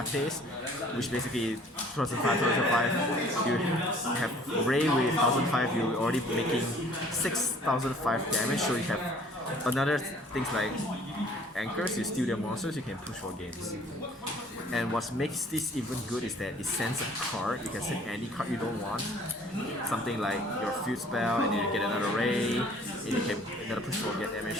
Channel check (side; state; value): both; normal; correlation 0.54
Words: which basically 2005. You have Ray with 1005, you're already making 6005 damage. So you have another things like anchors, you steal their monsters, you can push for games. And what makes this even good is that it sends a card. You can send any card you don't want. Something like your field spell, and you get another ray, and you can another push for get